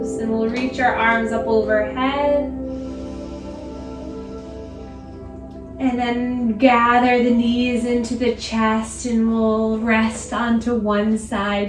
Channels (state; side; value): identical; both; correlation 1.00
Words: and we'll reach our arms up overhead. And then gather the knees into the chest, and we'll rest onto one